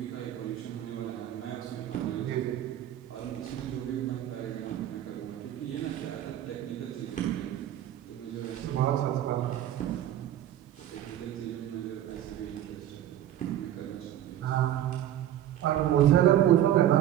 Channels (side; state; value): left; quieter; 12.0 dB